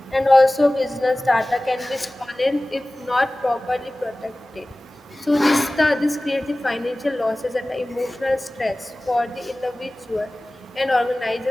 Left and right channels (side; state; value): both; normal; correlation 0.98